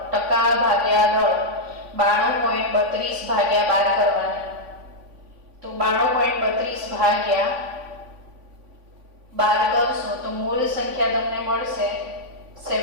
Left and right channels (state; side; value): late; left; 3.5 ms